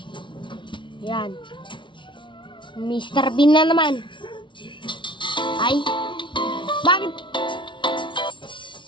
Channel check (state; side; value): late; right; 0.24 ms